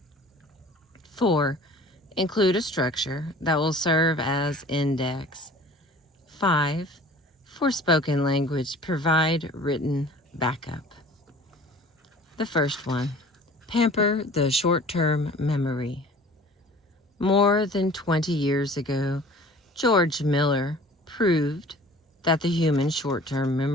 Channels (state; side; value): normal; both; correlation 0.46